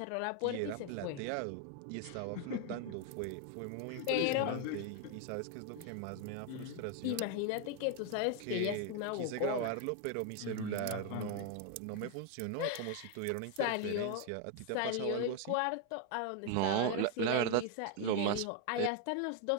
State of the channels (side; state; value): both; different; correlation 0.01